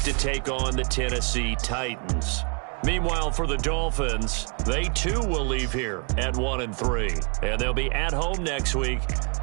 to take on the Tennessee Titans. Meanwhile, for the Dolphins, they too will leave here at 1-3. And they'll be at home next week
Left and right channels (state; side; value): quieter; left; 36.9 dB